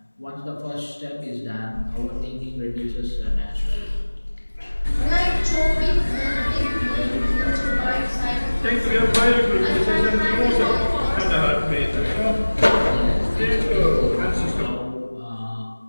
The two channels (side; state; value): both; inverted; correlation -1.00